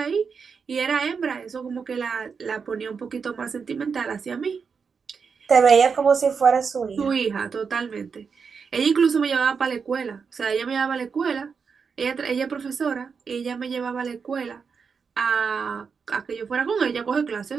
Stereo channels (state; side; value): quieter; left; 5.8 dB